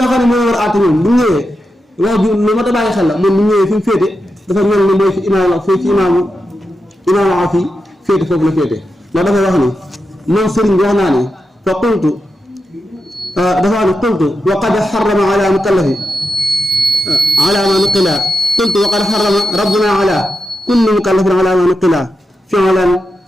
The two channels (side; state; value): both; normal; correlation 0.88